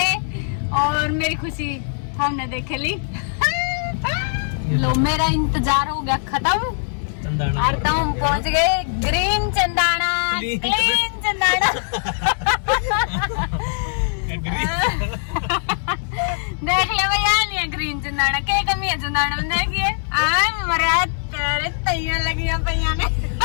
और मेरी खुशी हमने देखे ली। लो मेरा इंतजार हो गया खत्म और तो हम पहुंच गए ग्रीन चंदाना, क्लीन चंदाना। देख ले भैया नहीं है ग्रीन चंदाना, क्या कमी है चंदाना में? देखिए मरा तेरे तैयार लगी पैया ने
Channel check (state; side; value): silent; right; 65 dB below the other